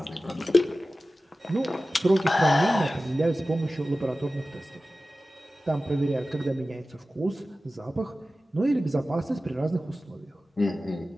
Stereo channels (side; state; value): both; normal; correlation 0.96